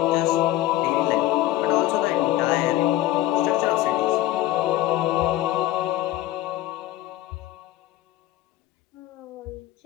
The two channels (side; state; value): right; quieter; 15.2 dB